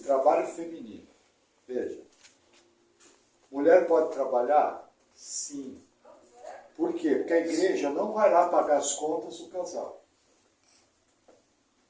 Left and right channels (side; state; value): both; identical; correlation 1.00